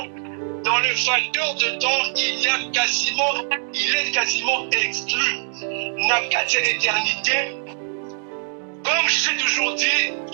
Dans le facteur de temps, il est quasiment exclu. Nakati éternité, comme je l'ai toujours dit,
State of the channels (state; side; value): silent; left; digital silence